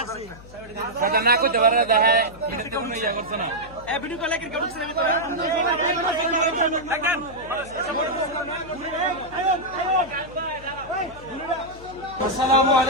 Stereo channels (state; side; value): noise; left; hum, 19 dB below the sound